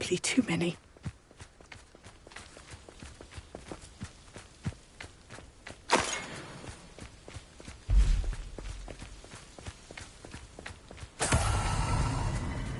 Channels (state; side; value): identical; both; correlation 1.00